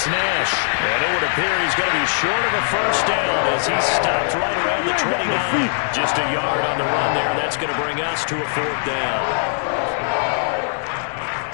Nash, and it would appear he's going to be short of a first down as he stopped right around the 29. Just a yard on the run there. That's going to bring us to a 4th down.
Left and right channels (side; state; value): right; silent; digital silence